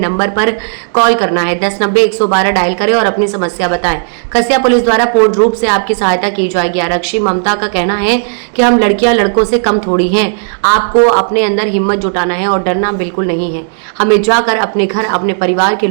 पर कॉल करना है, 1090-112 डायल करें और अपनी समस्या बताएं। कसिया पुलिस द्वारा पूर्ण रूप से आपकी सहायता की जाएगी। आरक्षी ममता का कहना है कि हम लड़कियां लड़कों से कम थोड़ी हैं, आपको अपने अंदर हिम्मत जुटाना है और डरना बिल्कुल नहीं है। हमें जाकर अपने घर अपने परिवार के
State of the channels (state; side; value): silent; left; digital silence